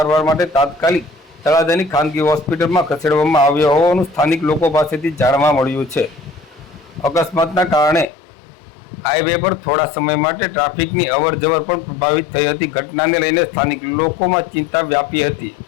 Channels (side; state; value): right; drops out; at 8.1 s